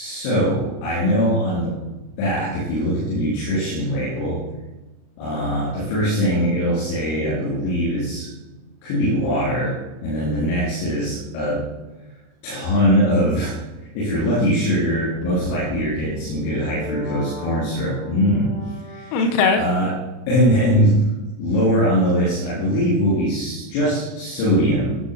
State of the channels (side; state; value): right; late; 39 ms